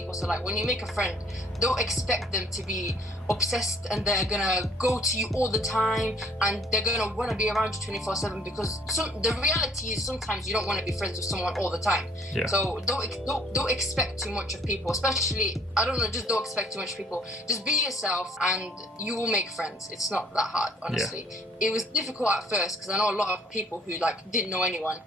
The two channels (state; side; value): normal; both; correlation 0.59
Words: So, like, when you make a friend, don't expect them to be obsessed and they're gonna go to you all the time and they're gonna want to be around you 24/7, because the reality is sometimes you don't want to be friends with someone all the time. So don't expect too much of people, especially, I don't know, just don't expect too much of people. Just be yourself and you will make friends. It's not that hard, honestly. It was difficult at first because I know a lot of people who like didn't know anyone,